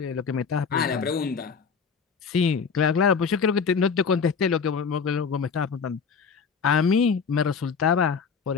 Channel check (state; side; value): quieter; right; 5.8 dB